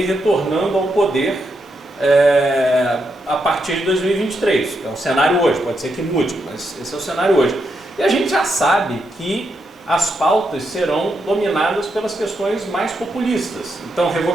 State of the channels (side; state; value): both; normal; correlation 0.82